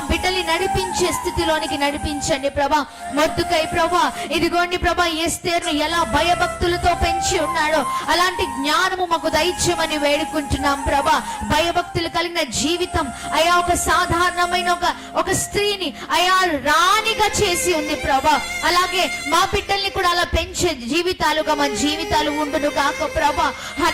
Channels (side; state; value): both; identical; correlation 1.00